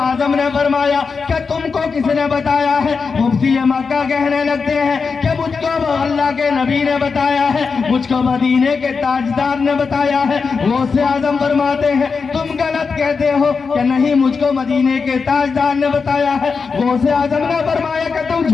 نے فرمایا کہ تم کو کس نے بتایا ہے؟ مفتی مکہ کہنے لگتے ہیں کہ مجھ کو اللہ کے نبی نے بتایا ہے، مجھ کو مدینے کے تاجدار نے بتایا ہے۔ غوث اعظم فرماتے ہیں تم غلط کہتے ہو کہ نہیں مجھ کو مدینے کے تاجدار نے بتایا ہے۔ غوث اعظم نے فرمایا کہ تم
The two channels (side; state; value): right; quieter; 5.1 dB